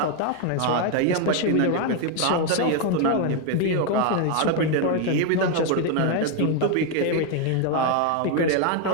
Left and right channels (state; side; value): different; both; correlation 0.01